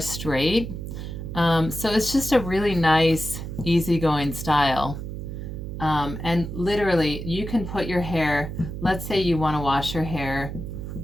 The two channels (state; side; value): noise; right; hum, 7 dB below the sound